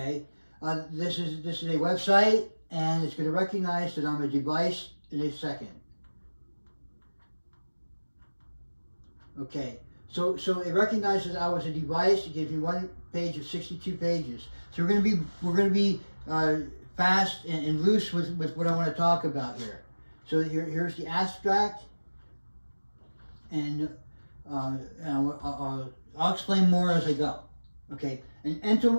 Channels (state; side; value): inverted; both; correlation -1.00